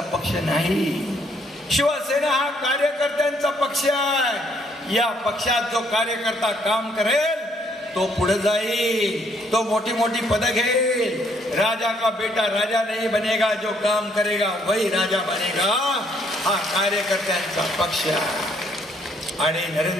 पक्ष नाही. शिवसेना हा कार्यकर्त्यांचा पक्ष आहे. या पक्षात जो कार्यकर्ता काम करेल तो पुढे जाईल, तो मोठी मोठी पद घेईल. राजा का बेटा राजा नहीं बनेगा, जो काम करेगा वही राजा बनेगा. हा कार्यकर्त्यांचा पक्ष आहे. आणि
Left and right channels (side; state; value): both; normal; correlation 0.68